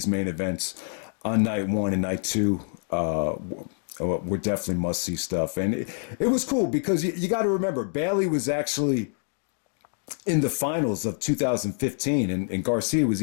main events on night one and night two were definitely must-see stuff. And it was cool because you got to remember, Bailey was actually in the finals of 2015, and Garcia was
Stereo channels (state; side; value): silent; right; 61 dB below the other